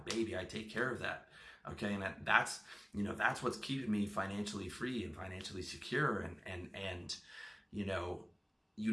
I take care of that. Okay, and that's what's keeping me financially free and financially secure. And you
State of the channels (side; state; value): both; identical; correlation 1.00